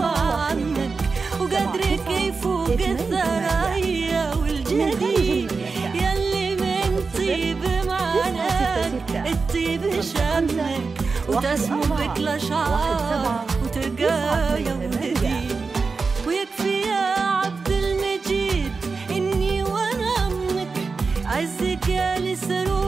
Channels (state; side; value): quieter; left; 4.5 dB